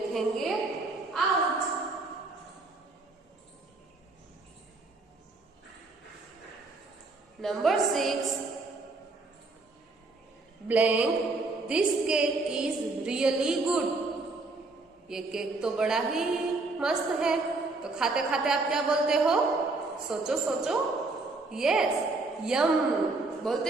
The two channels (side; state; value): left; quieter; 3.4 dB